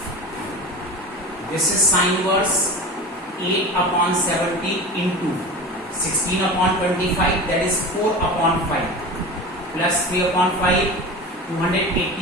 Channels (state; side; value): normal; both; correlation 0.31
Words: This is sin inverse 8/70 into 16/25, that is 4/5 plus 3/5